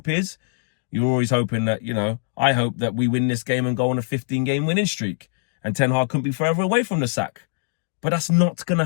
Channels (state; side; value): silent; right; digital silence